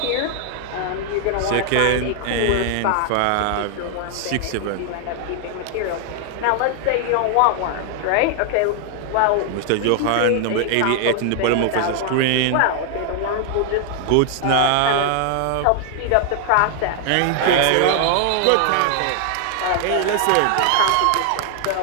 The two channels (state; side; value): different; both; correlation 0.00